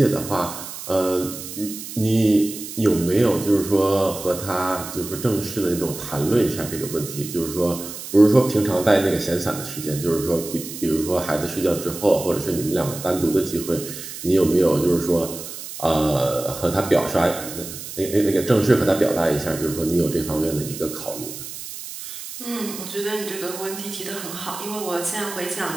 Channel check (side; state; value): right; noise; hiss, 10 dB below the sound